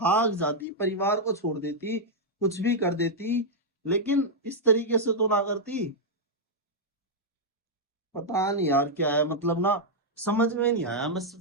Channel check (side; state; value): both; normal; correlation -0.04